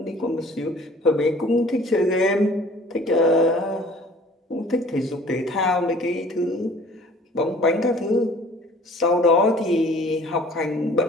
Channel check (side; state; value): both; normal; correlation 0.51